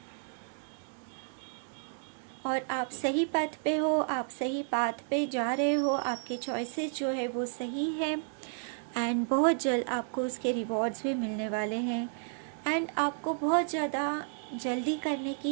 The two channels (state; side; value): silent; left; digital silence